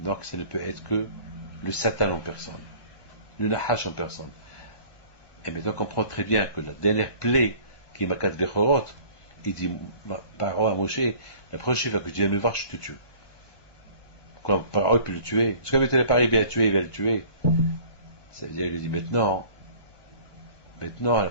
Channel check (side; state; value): right; late; 1.2 ms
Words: ça ne peut être que le Satan en personne, le Nahash en personne. Et maintenant on comprend très bien que la dernière plaie qui est Makat Bechorot, il dit Paro à Moshe, la prochaine fois que tu viens me voir, je te tue. Comme Paro peut le tuer, parce que quand il n'est pas arrivé à tuer, il va le tuer. Ça veut dire qu'il lui dit maintenant, la